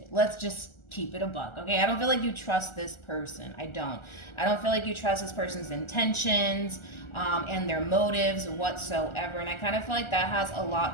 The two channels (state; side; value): late; right; 1.4 ms